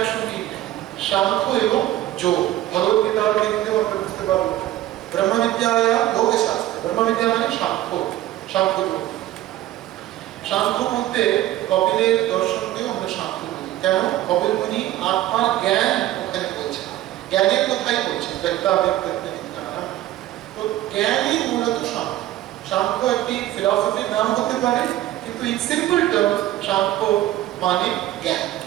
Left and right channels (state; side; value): quieter; left; 14.4 dB